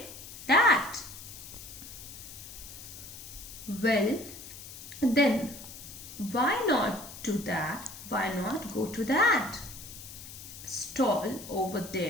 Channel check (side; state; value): left; noise; hiss, 13 dB below the sound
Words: that. Well, then why not do that? Why not go to that stall over